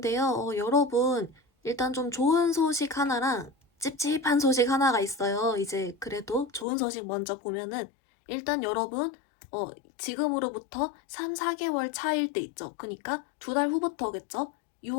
여러분, 일단 좀 좋은 소식 하나랑 찝찝한 소식 하나가 있어요. 이제 그래도 좋은 소식 먼저 보면은 일단 여러분, 지금으로부터 3, 4개월 차일 때 있죠. 그니까 2달 후부터겠죠.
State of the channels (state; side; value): drops out; right; at 6.7 s